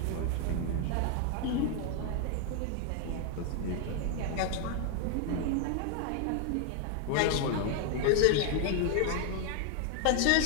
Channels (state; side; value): different; both; correlation 0.00